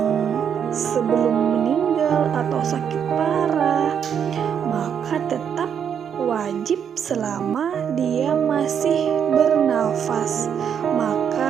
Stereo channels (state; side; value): quieter; left; 8.0 dB